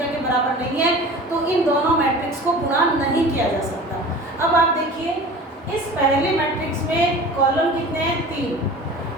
के बराबर नहीं है तो इन दोनों मैट्रिक्स को गुणा नहीं किया जा सकता। अब आप देखिए इस पहले मैट्रिक्स में कॉलम कितने हैं? 3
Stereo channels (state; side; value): normal; both; correlation 0.39